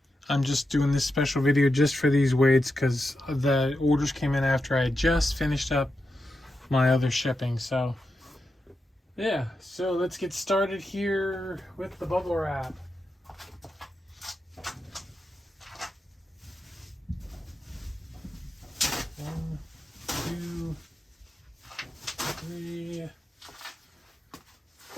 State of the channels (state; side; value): normal; both; correlation 0.88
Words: I'm just doing this special video just for these wades because the orders came in after I just finished up my other shipping. So yeah, so let's get started here with the bubble wrap. One, two, three.